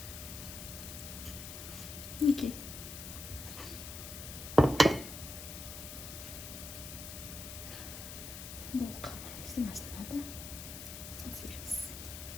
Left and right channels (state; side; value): noise; left; hiss, 9 dB below the sound